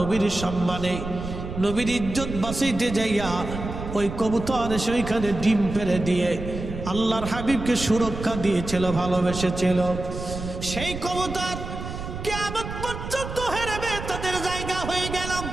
সম্মানে, নবীর ইজ্জত বাঁচাইতে যাইয়া ওই কবুতর এসে ওইখানে ডিম পেড়ে দিয়ে আল্লাহর হাবিবকে সুরক্ষা দিয়েছিল, ভালোবেসেছিল। সেই কবুতর কিয়ামত পর্যন্ত হেরেমে তাদের জায়গা হয়ে গেল।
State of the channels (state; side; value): noise; right; rumble, 8 dB below the sound